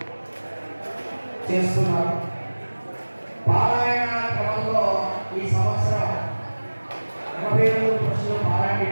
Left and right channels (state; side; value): inverted; both; correlation -1.00